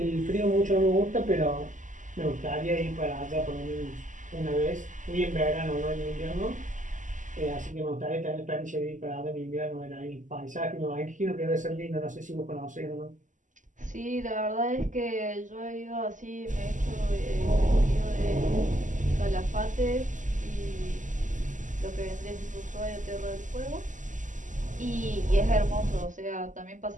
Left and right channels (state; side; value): late; left; 0.37 ms